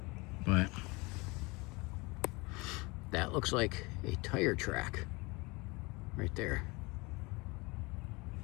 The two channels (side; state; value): right; quieter; 25.7 dB